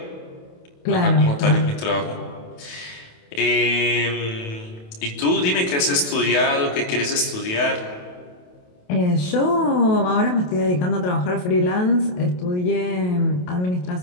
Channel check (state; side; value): late; right; 28 ms